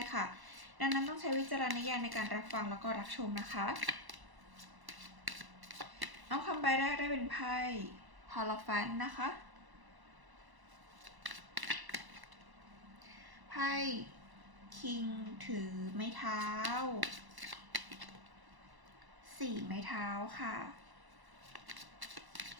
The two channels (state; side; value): late; left; 1.0 ms